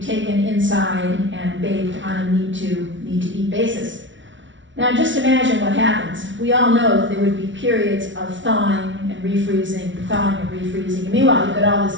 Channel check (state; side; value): late; left; 0.55 ms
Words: taken inside and baked on a need-to-eat basis. Now just imagine what happens. We all know that there would be periods of thawing and refreezing, thawing and refreezing. And meanwhile, you've got all this